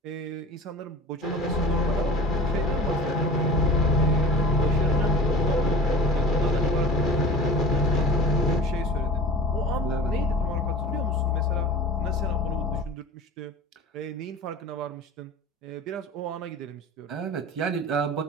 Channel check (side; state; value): both; normal; correlation 0.37